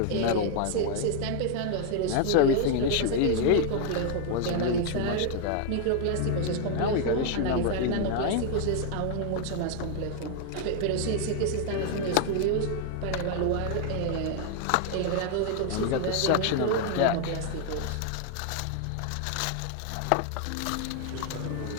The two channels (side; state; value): both; different; correlation 0.00